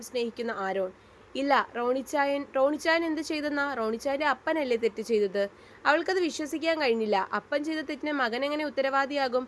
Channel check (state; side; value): identical; both; correlation 1.00